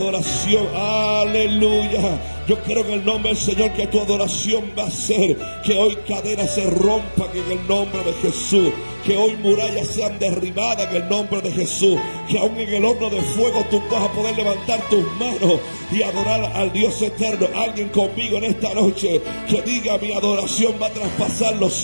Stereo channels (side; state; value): both; inverted; correlation -1.00